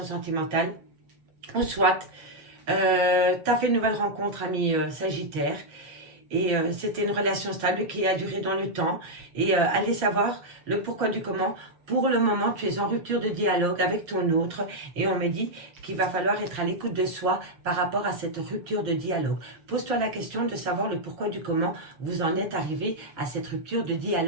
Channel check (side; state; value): left; late; 7.1 ms